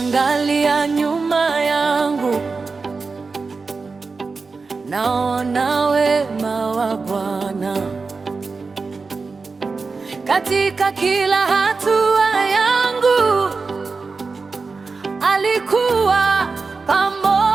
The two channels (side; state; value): left; quieter; 4.3 dB